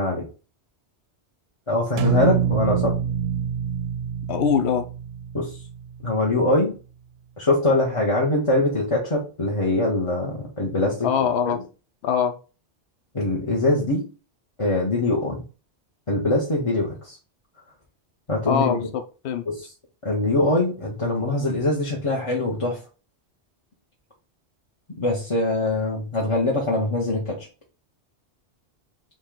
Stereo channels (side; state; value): both; normal; correlation -0.15